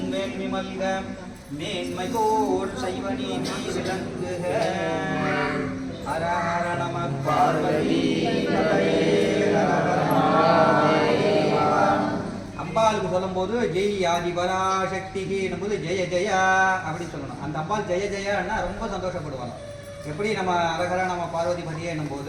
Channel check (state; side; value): identical; both; correlation 1.00